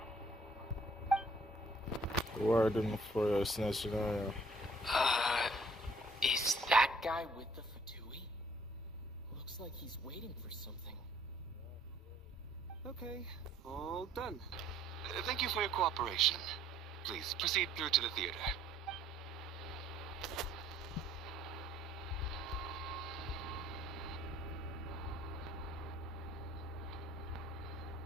Warden for Snezhnaya. Is that guy with the Fatui? Looks like he's waiting for something. Okay, all done. Thank you for your cooperation. Please proceed through to the theater.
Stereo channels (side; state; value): both; normal; correlation 0.60